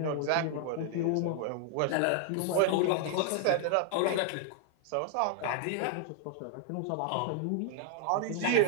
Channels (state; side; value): different; both; correlation 0.00